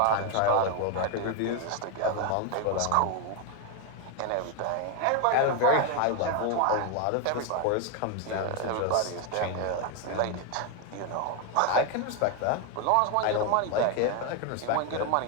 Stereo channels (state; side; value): different; both; correlation 0.01